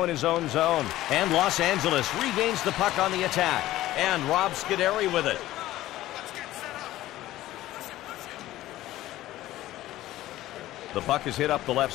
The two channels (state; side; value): quieter; right; 15.3 dB